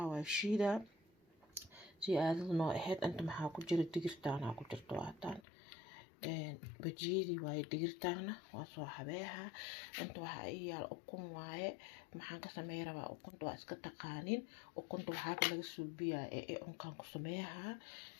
waa shiida si aadad noo ahayd inta maxaa ku jira digirtaana ku jirto waataan bajiidi waay digirtaana waa soo habeeha inta waxa ay yaal ukun waaye maxaan ka sameey rabaa ukunta waa iska taqaanin ukunta waxa laga suubiyaa ee unkaan ku sameeyaha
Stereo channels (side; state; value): right; drops out; at 5.4 s